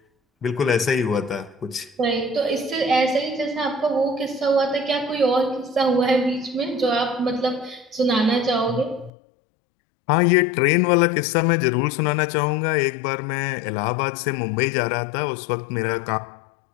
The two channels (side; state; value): right; drops out; at 9.1 s